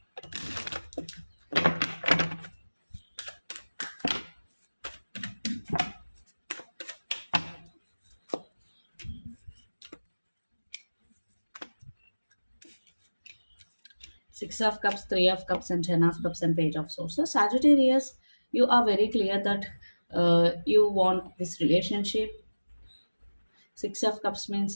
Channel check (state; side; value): inverted; both; correlation -1.00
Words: Six of Cups, Three of Cups, and Ten of Cups, and Page of Swords. So Sagittarius, you are very clear that you want this relationship. Six of Cups means